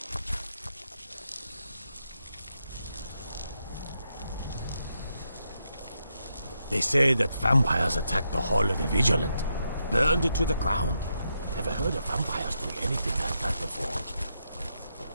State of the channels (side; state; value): both; inverted; correlation -0.82